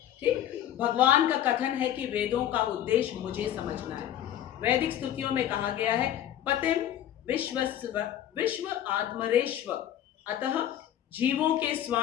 ठीक। भगवान का कथन है कि वेदों का उद्देश्य मुझे समझना है। वैदिक स्तुतियों में कहा गया है पतिम विश्व आत्मरेश्व, अतः जीवों के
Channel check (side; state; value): right; quieter; 11.4 dB